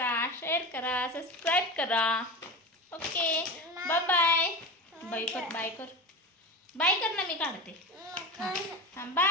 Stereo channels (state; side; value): normal; both; correlation 0.25